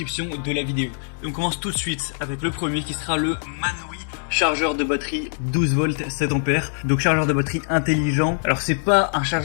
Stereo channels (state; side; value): silent; right; digital silence